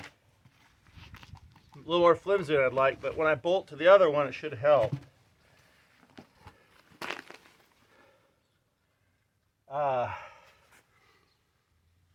A little more flimsy than I'd like, but when I bolt to the other one, it should help. Of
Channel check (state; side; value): identical; both; correlation 1.00